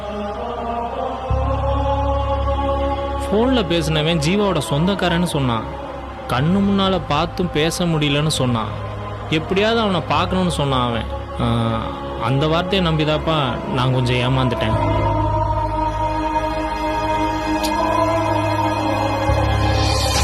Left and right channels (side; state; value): both; identical; correlation 1.00